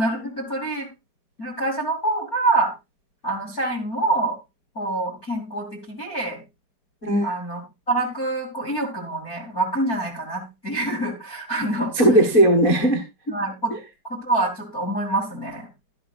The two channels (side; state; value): right; late; 4.5 ms